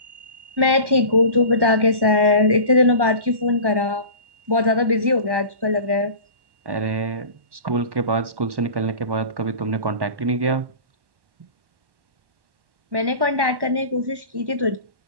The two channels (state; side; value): late; left; 1.1 ms